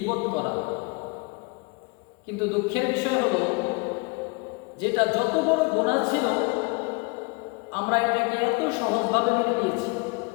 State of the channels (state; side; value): quieter; right; 30.1 dB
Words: করা। কিন্তু দুঃখের বিষয় হলো, যেটা যত বড় গুনাহ ছিল আমরা এটাকে এত সহজভাবে মেনে নিয়েছি।